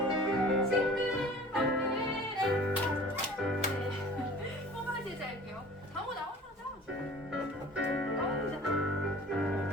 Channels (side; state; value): both; normal; correlation 0.45